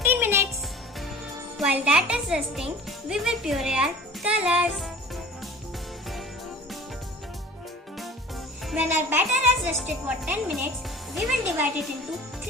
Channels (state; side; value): normal; both; correlation 0.43